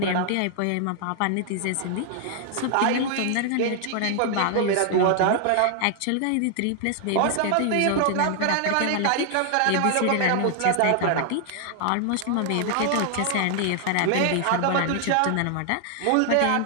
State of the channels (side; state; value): both; different; correlation 0.00